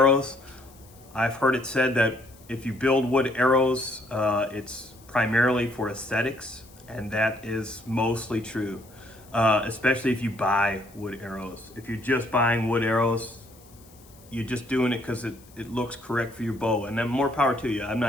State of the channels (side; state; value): left; noise; hiss, 26 dB below the sound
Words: I've heard it said that if you build wood arrows, it's primarily for aesthetics, and that is mostly true, especially if you buy wood arrows. If you're just buying wood arrows, you're just doing it because it looks correct for your bow, and then more power to you. I'm